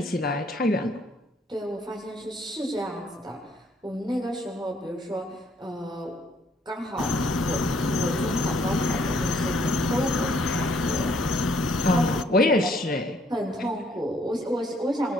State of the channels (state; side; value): normal; both; correlation 0.65